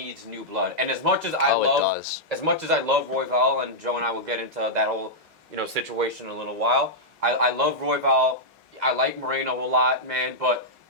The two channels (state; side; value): normal; both; correlation -0.08